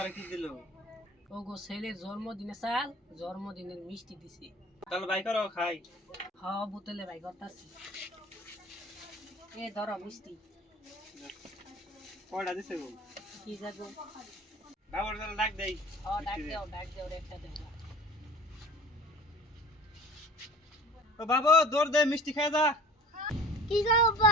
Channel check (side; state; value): both; normal; correlation 0.43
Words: কি দিল? ও গো ছেলের জন্মদিনে চাল, জন্মদিনের মিষ্টি দিছি। তাহলে বাই করো খাই। হ্যাঁ বোতলে ভাই করতাছি। এ ধরো মিষ্টি। কয়টা দিছে গো? কি যাবো? ডাবর তাহলে ডাক দেই। হ্যাঁ ডাক দাও রে একটা দেও। ও বাবু দৌড় দে, মিষ্টি খাই যা। কি গো